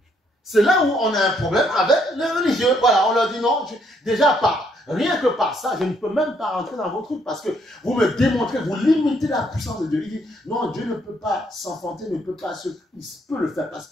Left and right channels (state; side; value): normal; both; correlation 0.70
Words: C'est là où on a un problème avec les religieux. Voilà, on leur dit non, déjà rien que par ça, je ne peux même pas rentrer dans vos trucs parce que vous me démontrez, vous limitez la puissance de Dieu. Il dit non, Dieu ne peut pas s'enfanter, il peut le faire parce